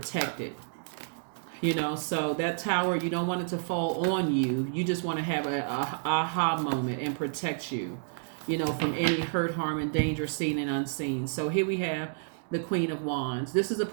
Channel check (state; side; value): silent; left; digital silence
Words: So that tower, you don't want it to fall on you. You just want to have a aha moment and protect you, from any hurt, harm, and danger seen and unseen. So here we have the Queen of Wands. This is a